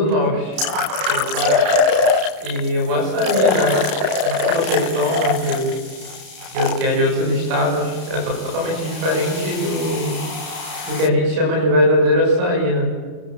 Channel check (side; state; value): left; late; 32 ms